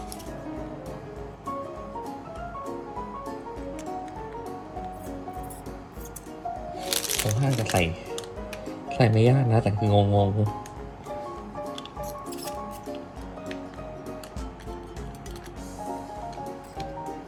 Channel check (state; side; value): identical; both; correlation 1.00